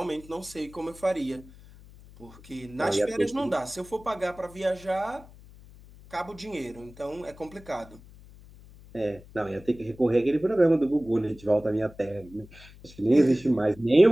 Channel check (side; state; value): left; noise; hum, 21 dB below the sound